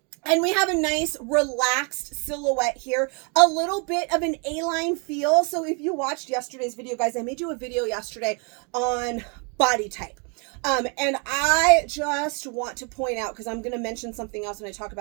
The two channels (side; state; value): left; quieter; 35.4 dB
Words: And we have a nice relaxed silhouette here, a little bit of an A-line feel. So if you watched yesterday's video, guys, I made you a video yesterday on body type. And I just want to point out, because I'm going to mention something else when I talk